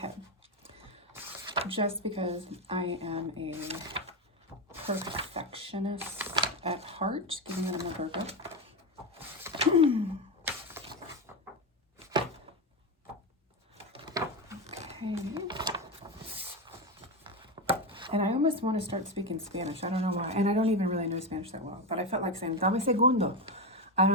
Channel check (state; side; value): normal; both; correlation 0.14